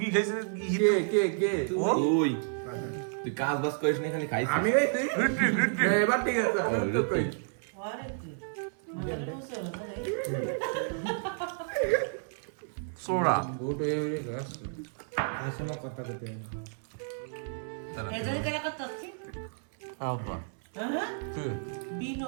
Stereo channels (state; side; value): silent; left; 57 dB below the other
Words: খাইছে কে ও ওই তুই কাজ বাজ করিস না খালি খাইছিস আমি এই তুই এবার ঠিক আছে সোরা গোট হয়ে গেলে গাছ আসলে কথা করতে হবে এদের কেন কথা হচ্ছে আব্বা হ্যাঁ তুই